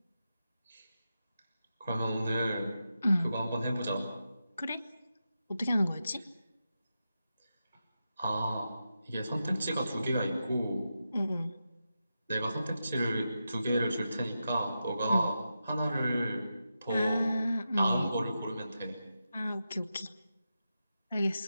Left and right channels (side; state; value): both; inverted; correlation -0.89